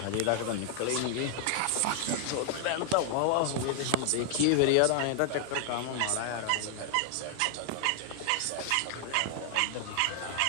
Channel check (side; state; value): both; different; correlation -0.01